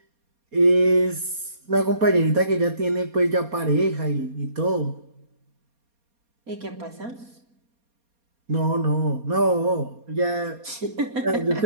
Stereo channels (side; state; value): left; late; 4.2 ms